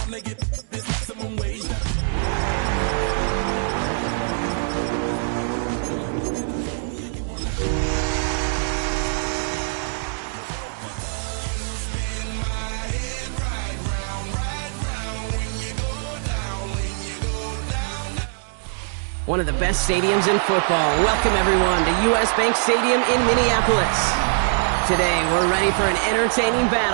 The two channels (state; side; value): silent; left; 63 dB below the other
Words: of the best stadiums in football. Welcome, everyone, to US Bank Stadium in Minneapolis. Today, we're ready for an entertaining